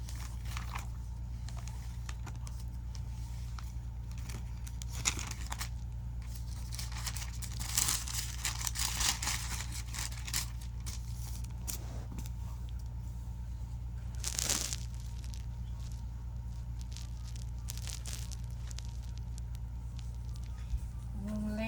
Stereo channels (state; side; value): identical; both; correlation 1.00